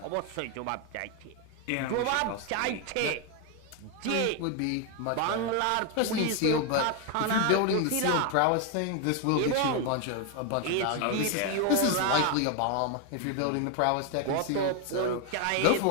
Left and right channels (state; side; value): different; both; correlation 0.01